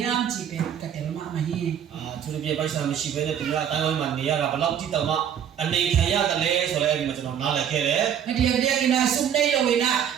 chi pen ka tel ma ma hi သူတို့ပြပိုက်ဆံမရှိဘဲနဲ့သူများအတိုင်းဝိုင်းမှာနေရတာဘယ်လောက်တိတောင်မှအနေခံရတယ်လဲဆိုတော့အဲ့ဒီမှာကျွန်တော်နားလည်ခဲ့တယ် adia dia ina sum nei lo ina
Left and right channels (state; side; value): quieter; left; 9.0 dB